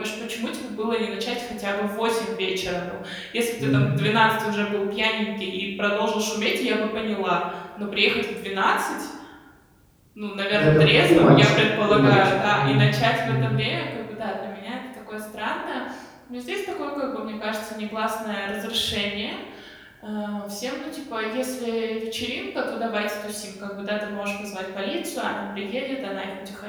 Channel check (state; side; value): identical; both; correlation 1.00